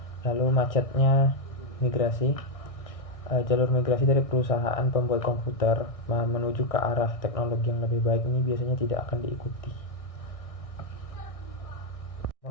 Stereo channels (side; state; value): right; late; 1.6 ms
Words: Lalu macetnya migrasi. Jalur migrasi dari perusahaan pembuat komputer menuju ke arah teknologi yang lebih baik ini biasanya tidak akan diikuti.